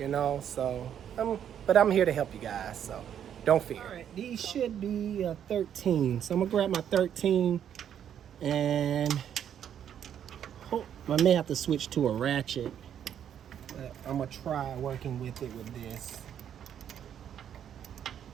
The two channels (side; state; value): left; quieter; 9.3 dB